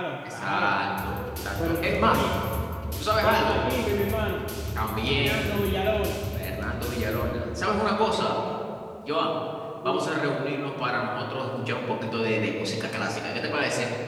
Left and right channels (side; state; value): both; identical; correlation 1.00